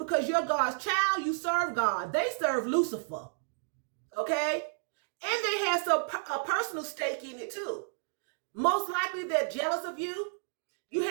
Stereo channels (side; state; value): left; silent; digital silence